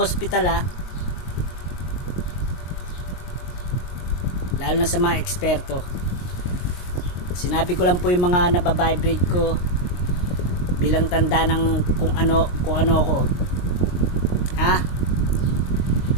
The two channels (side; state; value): right; late; 22 ms